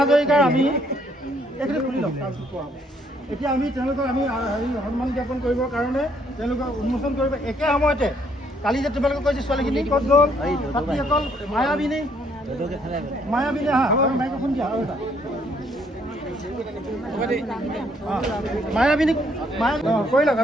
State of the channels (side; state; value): both; normal; correlation 0.68